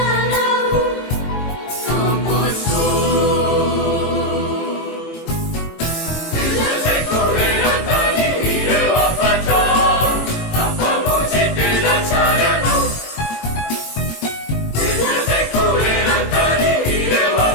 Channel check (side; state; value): right; late; 18 ms